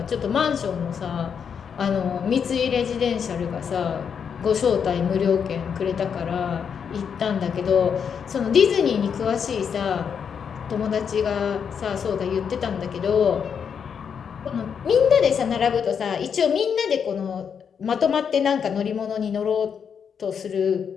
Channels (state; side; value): quieter; right; 7.1 dB